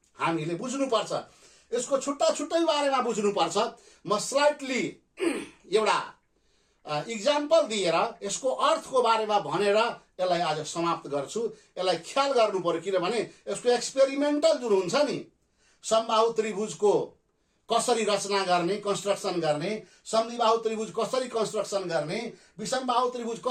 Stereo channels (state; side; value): identical; both; correlation 1.00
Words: हामीले बुझ्नुपर्छ। यसको छुट्टा छुट्टै बारेमा बुझ्नुपर्छ। म स्लाइटली एउटा इक्जाम्पल दिएर यसको अर्थको बारेमा भनेर यसलाई आज समाप्त गर्छु। यसलाई ख्याल गर्नु पर्यो, किनभने यसको एक्सपेरिमेन्टल जुन हुन्छ नि, समबाहु त्रिभुजको कसरी रचना गर्ने, कन्स्ट्रक्सन गर्ने, समद्विबाहु त्रिभुज कसरी कन्स्ट्रक्सन गर्ने, विषमबाहु त्रिभुज